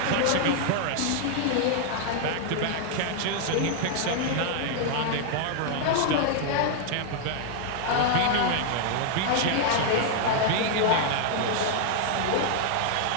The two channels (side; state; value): both; different; correlation 0.00